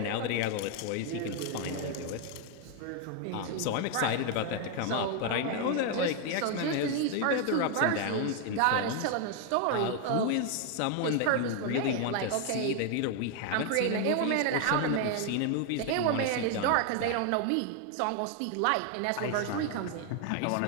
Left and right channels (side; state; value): both; different; correlation 0.01